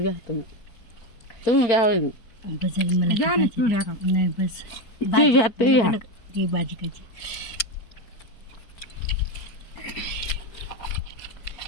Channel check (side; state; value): right; late; 4.5 ms